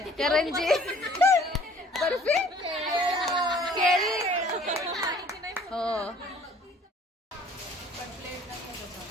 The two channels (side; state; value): both; normal; correlation 0.54